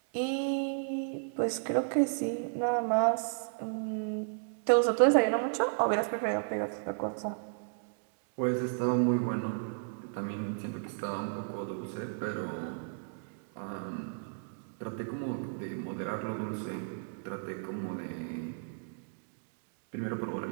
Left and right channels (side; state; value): left; silent; digital silence